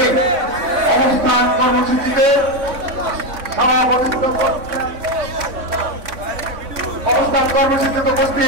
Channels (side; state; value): left; late; 3.6 ms